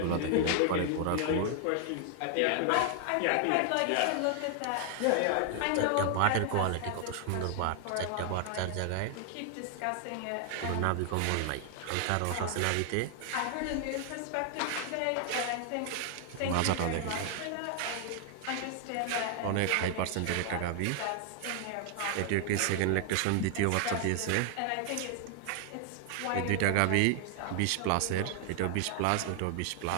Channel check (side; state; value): both; different; correlation 0.00